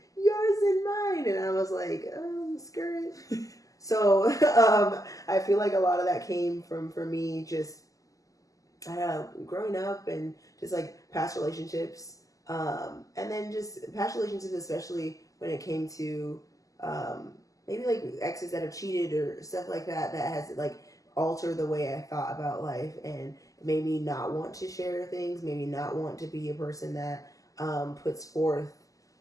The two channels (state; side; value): late; right; 0.17 ms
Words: yours and mine. And I was like, skirt. So I feel like a lot of that came from, for me, just growing up and just like past relationships. And then just past relationships, especially when it came to maybe like exes that have cheated or stuff like that, that has like alter the way I thought about life and made me not want to share things, maybe not want to be a person that puts